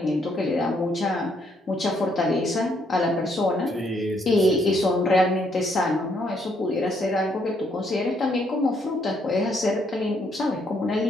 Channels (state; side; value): normal; both; correlation 0.72